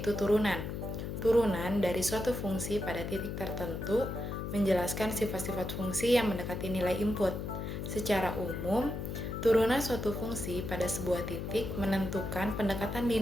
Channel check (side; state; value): left; noise; hum, 5 dB below the sound